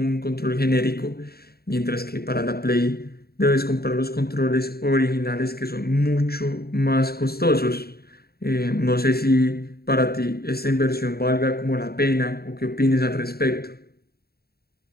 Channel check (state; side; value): late; right; 0.45 ms